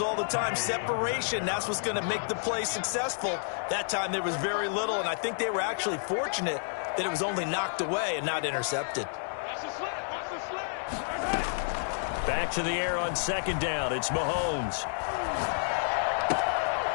all the time. Separation, that's what's going to make the play successful. That time there was very little, and I think they were actually fortunate that it was only knocked away and not intercepted. Back to the air on second down. It's Mahomes.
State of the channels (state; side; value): silent; right; digital silence